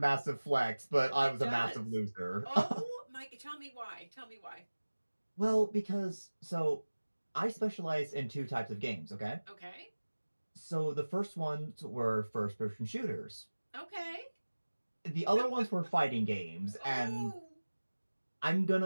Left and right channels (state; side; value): inverted; both; correlation -1.00